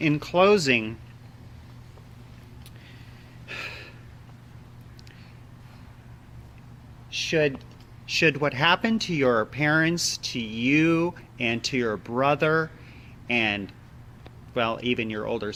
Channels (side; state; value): both; identical; correlation 1.00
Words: closing, should what happened to your parents, to you, and to your brother, and, well, even your older